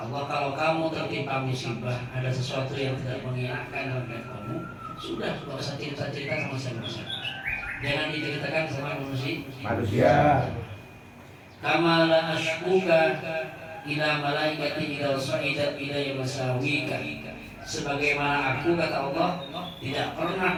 Allah, kalau kamu tertimpa musibah, ada sesuatu yang tidak mengenakan dalam hidup kamu, sudah nggak usah cerita-cerita sama siapa-siapa. Jangan diceritakan sama manusia. Kama la ashkuka ila malaikati idza sa'idat ilayya masawika. Sebagaimana aku, kata Allah, tidak pernah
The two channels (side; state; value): both; identical; correlation 1.00